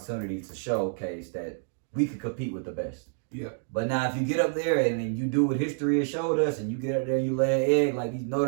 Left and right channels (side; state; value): left; silent; digital silence